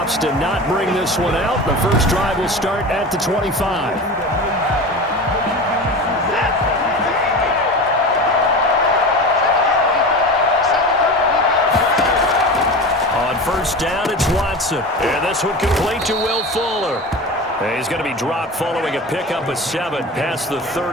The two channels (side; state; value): both; normal; correlation 0.30